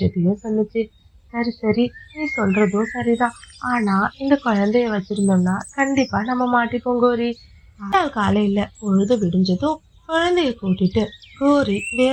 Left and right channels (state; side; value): identical; both; correlation 1.00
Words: சொல்லுச்சு. சரி சரி, நீ சொல்றதும் சரிதான். ஆனா இந்த குழந்தைய வச்சிருந்தோம்னா கண்டிப்பா நம்ம மாட்டிப்போம் கோரி. காலையில பொழுது விடிஞ்சதும் குழந்தைய கூட்டிட்டு கோரி